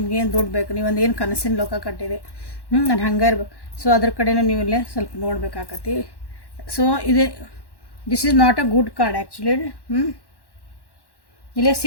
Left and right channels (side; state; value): right; late; 1.1 ms